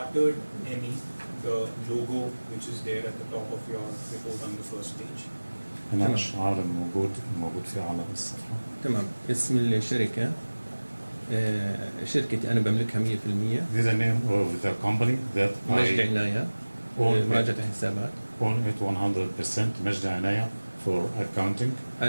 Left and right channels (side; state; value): both; inverted; correlation -1.00